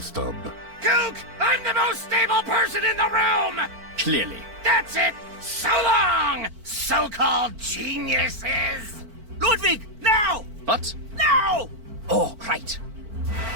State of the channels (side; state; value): left; late; 4.5 ms